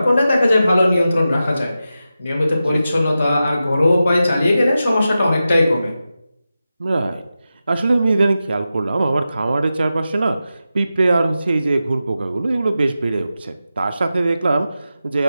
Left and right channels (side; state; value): both; inverted; correlation -0.92